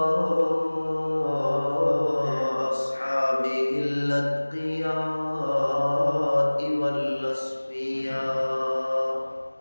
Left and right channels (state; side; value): inverted; both; correlation -1.00